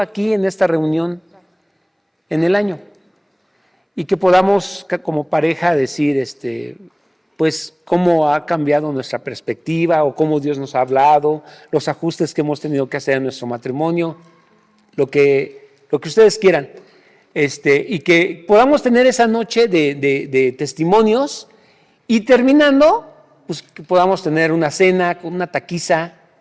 en esta reunión en el año, y que podamos como pareja decir pues cómo ha cambiado nuestra perspectiva o cómo Dios nos ha hablado, los ajustes que hemos tenido que hacer en nuestro matrimonio, lo que ustedes quieran, y que podamos tener esa noche de testimonios, y terminando, pues que podamos tener una cena con una taquiza,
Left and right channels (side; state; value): both; identical; correlation 1.00